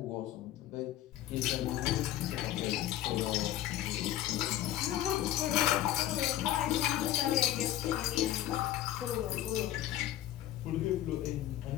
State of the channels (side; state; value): right; quieter; 13.2 dB